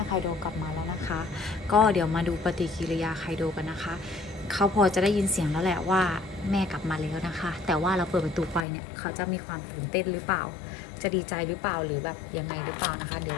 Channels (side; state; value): right; drops out; at 8.7 s